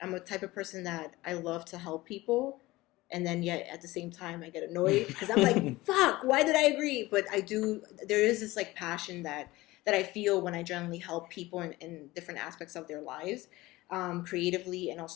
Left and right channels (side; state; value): right; quieter; 19.2 dB